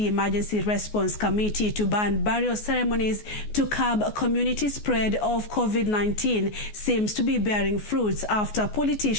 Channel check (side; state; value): right; late; 14 ms